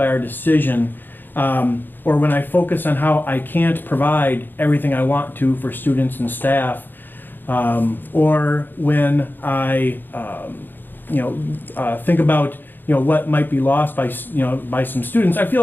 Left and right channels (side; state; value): right; late; 0.093 ms